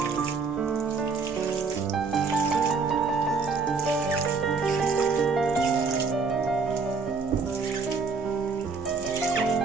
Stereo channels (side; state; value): left; quieter; 4.7 dB